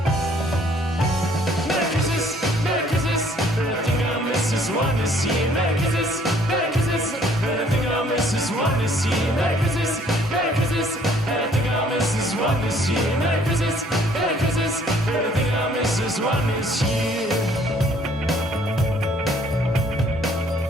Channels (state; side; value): normal; both; correlation 0.61